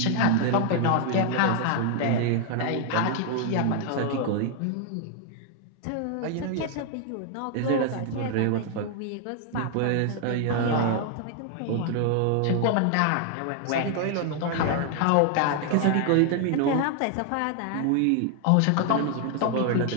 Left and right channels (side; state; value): both; different; correlation 0.00